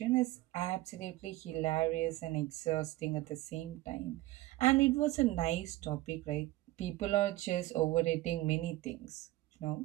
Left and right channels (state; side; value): quieter; left; 17.4 dB